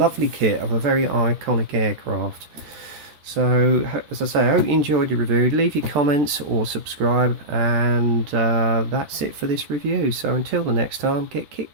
kit of a very iconic aircraft. So, as I say, I hope you enjoyed your review. Leave your comments or subscribe, and that's it for this review. So until the next time, get kit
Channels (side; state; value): left; late; 14 ms